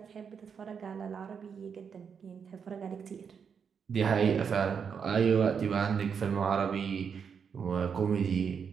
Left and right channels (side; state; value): left; quieter; 6.7 dB